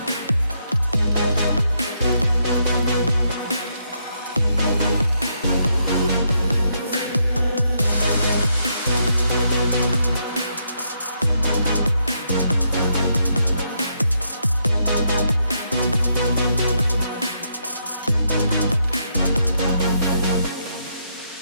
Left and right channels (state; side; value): inverted; both; correlation -0.77